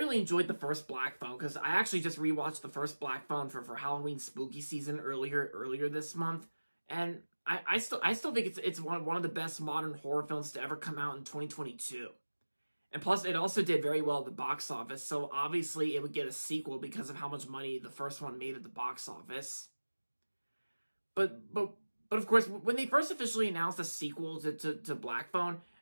enjoyed the first Black Phone because I actually just rewatched the first Black Phone for Halloween Spooky Season earlier this month, and I still think it's one of the best modern horror films to ever come out in 2022. And plus, it also did very well at the box office, so obviously it would get a sequel because of how much money the first one made at the box office. But of course, when they first officially announced a sequel to Black Phone,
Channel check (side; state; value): both; inverted; correlation -1.00